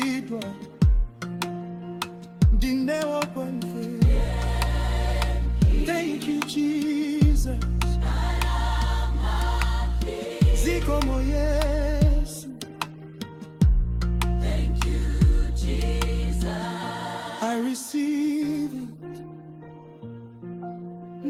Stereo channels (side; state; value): both; identical; correlation 1.00